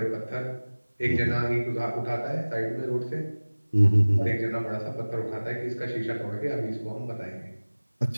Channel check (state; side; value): inverted; both; correlation -1.00